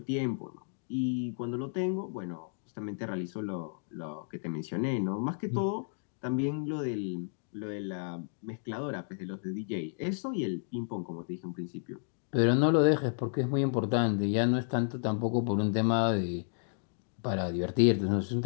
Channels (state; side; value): silent; right; digital silence